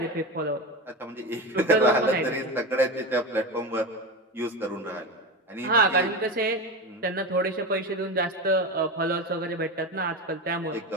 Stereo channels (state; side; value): normal; both; correlation 0.22